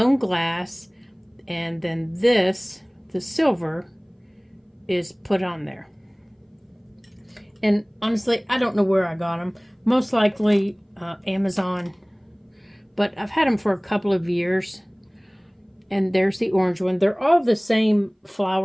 glass. And then this, the silver, is put on there. And honestly, I don't know where I got them. Most likely Amazon. But I've had them for a couple of years. And there's the orange one. They're all the same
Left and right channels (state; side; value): identical; both; correlation 1.00